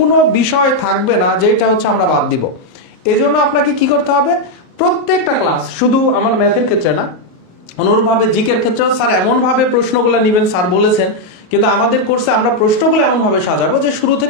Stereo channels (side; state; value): right; late; 31 ms